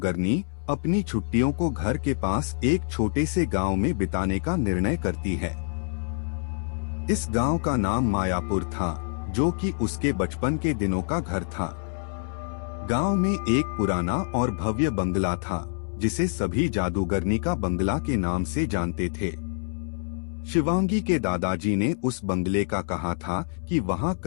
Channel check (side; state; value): right; silent; 61 dB below the other